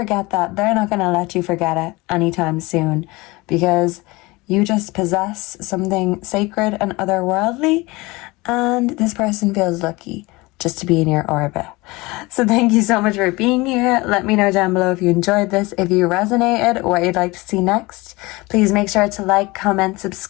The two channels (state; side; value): quieter; right; 22.7 dB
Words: that. They're not going to let you forget it anytime soon, because you just possess something sacred and otherworldly, and this person feels lucky just to be in your orbit. So thank you so much for being here. Let me know down below if you enjoyed this, if you resonated, what you'd like to see next. Please make sure to like, comment,